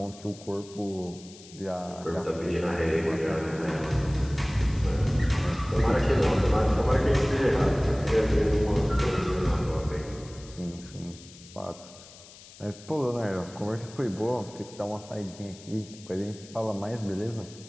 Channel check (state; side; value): noise; left; hiss, 20 dB below the sound